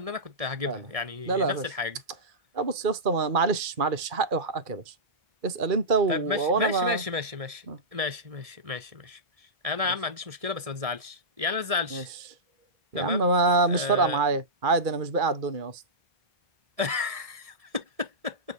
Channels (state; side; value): late; left; 1.7 ms